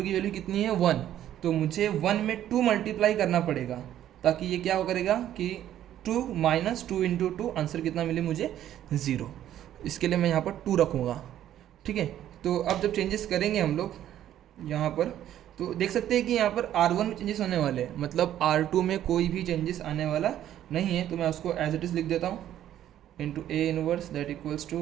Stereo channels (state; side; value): quieter; left; 11.7 dB